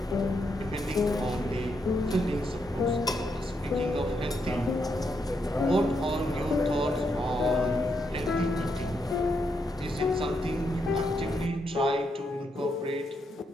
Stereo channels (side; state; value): both; normal; correlation 0.80